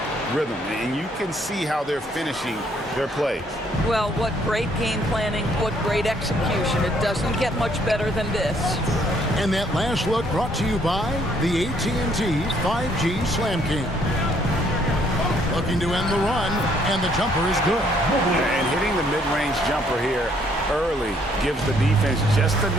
rhythm, and you can see how they're finishing their plays. Well, what great game planning, what great execution. It doesn't get much better than this. And that last look brought to you by the AT&T 5G Slam Cam. Looking to end the run, and the jumper is good. And hitting the mid-range jumper here early gives the defense just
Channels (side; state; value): both; normal; correlation 0.66